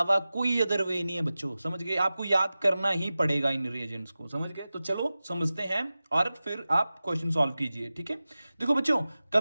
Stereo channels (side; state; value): both; inverted; correlation -0.96